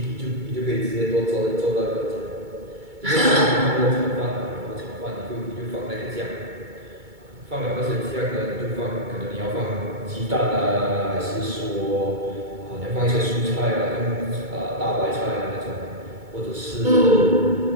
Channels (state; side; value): late; left; 2.2 ms